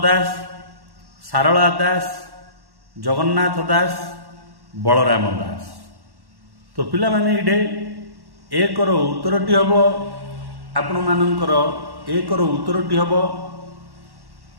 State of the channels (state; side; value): late; left; 1.1 ms